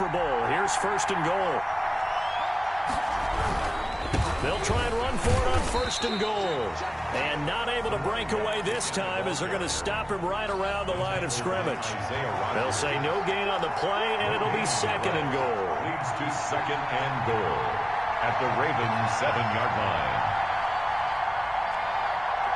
Bowl. Here's 1st and goal. They'll try and run for it on 1st and goal. And not able to break away this time as they're going to stop him right around the line of scrimmage. They'll say no gain on the play, and it'll be 2nd and goal. Leads to 2nd and goal at the Ravens 7-yard line.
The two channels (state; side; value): identical; both; correlation 1.00